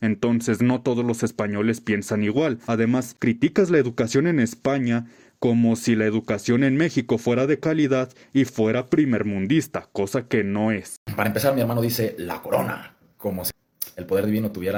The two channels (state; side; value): identical; both; correlation 1.00